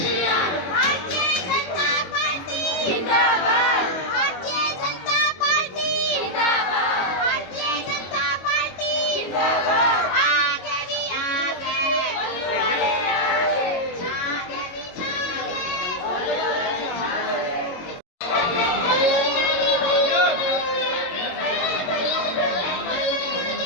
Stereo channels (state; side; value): late; right; 22 ms